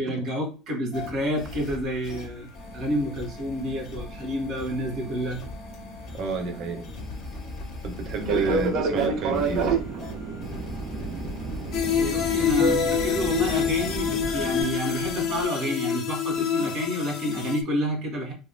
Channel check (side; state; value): both; normal; correlation 0.38